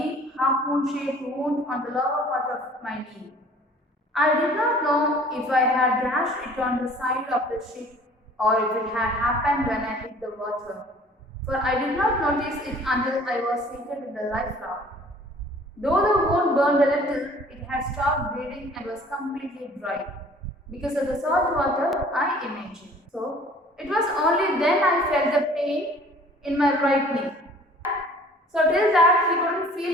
half-moon-shaped wound on the lower part of my knee. I did not know if I had gashed it on the side of the ship or if it had happened when I hit the water, for I did not notice it until I was seated in the life raft. Though the wound burned a little, it had stopped bleeding and was completely dry because of the salt water, I imagine. So, it was only then I felt the pain in my right knee. So, till that he couldn't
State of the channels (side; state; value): both; normal; correlation 0.51